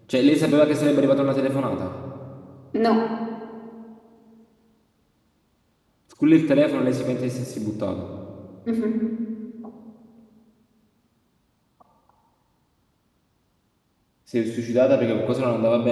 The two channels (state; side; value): identical; both; correlation 1.00